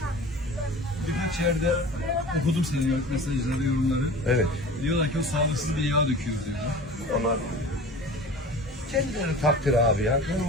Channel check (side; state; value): both; normal; correlation 0.39